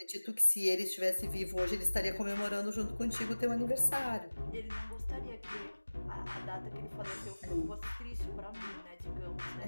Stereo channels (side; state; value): both; inverted; correlation -1.00